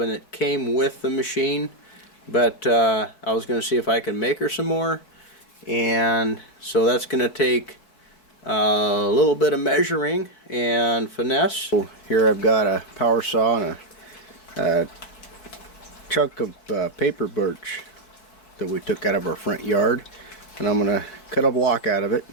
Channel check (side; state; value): right; late; 4.6 ms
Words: that came with the machine, but I was going to see if I can make her some more, and so that's going to take a little bit of measuring and finesse. So here I've got a power saw and a chunk of paper birch that we took out of our front yard, and I'm going to cut a block out of it